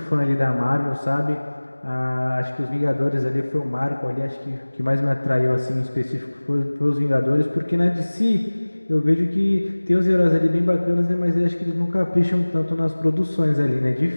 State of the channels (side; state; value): both; inverted; correlation -1.00